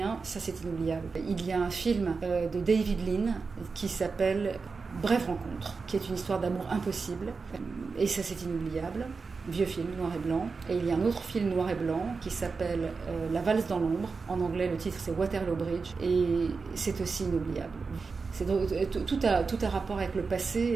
ça c'est inoubliable. Il y a un film de David Lean qui s'appelle Brève rencontre, qui est une histoire d'amour impossible, et ça c'est inoubliable. Vieux film, noir et blanc. Et il y a un autre film noir et blanc qui s'appelle La valse dans l'ombre. En anglais, le titre c'est Waterloo Bridge, et c'est aussi inoubliable. Tout a rapport avec le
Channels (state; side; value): quieter; left; 4.6 dB